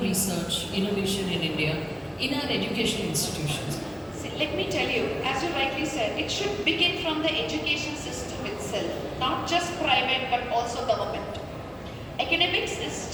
research, innovation in India, in our education institutions? See, let me tell you, as you rightly said, it should begin from the education system itself, not just private but also government. Academics is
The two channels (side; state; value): both; identical; correlation 1.00